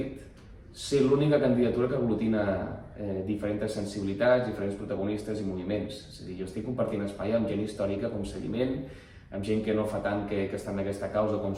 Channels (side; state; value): both; identical; correlation 1.00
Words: ser l'única candidatura que aglutina diferents sensibilitats, diferents protagonistes i moviments. És a dir, jo estic compartint espai amb gent històrica com Seguiment, amb gent que no fa tant que està en aquesta causa com